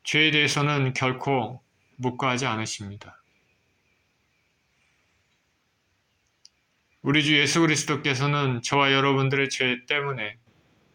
죄에 대해서는 결코 묵과하지 않으십니다. 우리 주 예수 그리스도께서는 저와 여러분들의 죄 때문에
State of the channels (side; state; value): both; identical; correlation 1.00